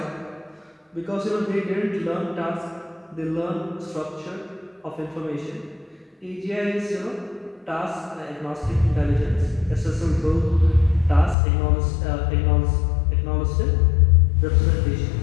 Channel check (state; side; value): drops out; right; at 11.4 s